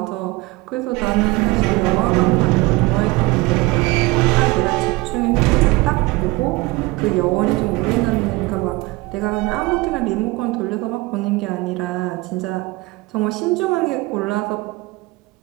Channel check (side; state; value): left; quieter; 22.0 dB